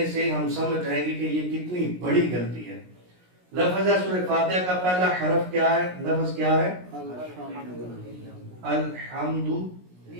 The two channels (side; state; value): left; late; 17 ms